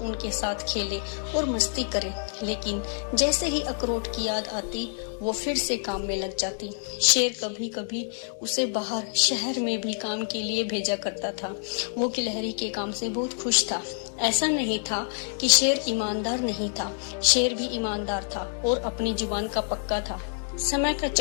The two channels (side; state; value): right; silent; digital silence